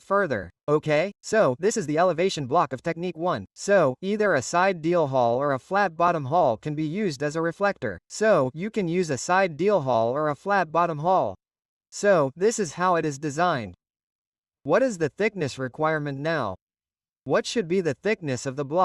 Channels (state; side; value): identical; both; correlation 1.00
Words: further. Okay, so this is the elevation block of technique 1. So, either a side deal hall or a flat bottom hall can be used as a reflector. So, you can use a side deal hall or a flat bottom hall. So, this is how it is designed. What is the thickness requirement now? What should be the thickness of the